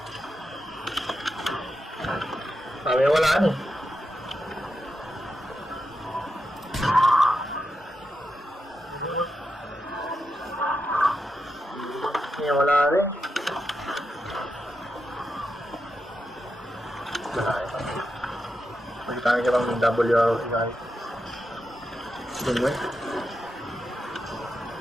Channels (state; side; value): normal; both; correlation 0.87